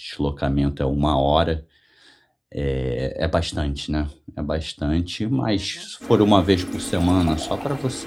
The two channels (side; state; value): both; identical; correlation 1.00